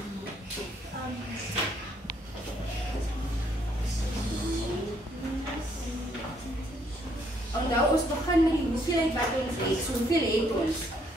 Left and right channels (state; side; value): normal; both; correlation 0.69